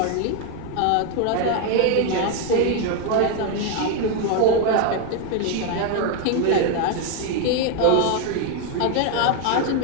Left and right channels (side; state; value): both; different; correlation 0.01